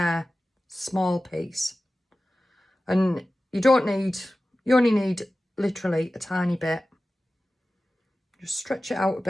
small piece. And you only need literally a tiny bit. Just stretch it out a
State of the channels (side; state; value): both; normal; correlation 0.96